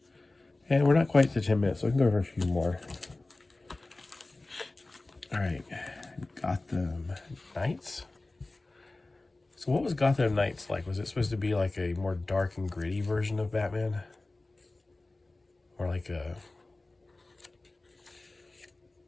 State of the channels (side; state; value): right; quieter; 3.0 dB